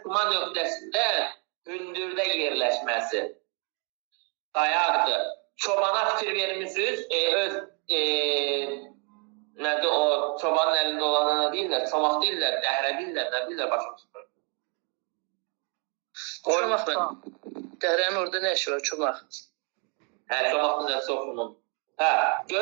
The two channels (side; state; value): left; quieter; 36.7 dB